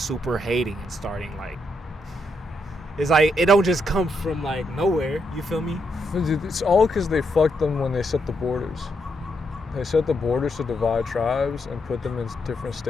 hating and starting like, it's like, it don't just come from like nowhere. You feel me? It's all because they fucked them when they set the borders. They set the borders to divide tribes and put them in different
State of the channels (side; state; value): both; normal; correlation 0.79